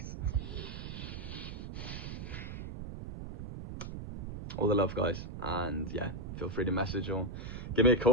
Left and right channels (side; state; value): right; noise; rumble, 7 dB below the sound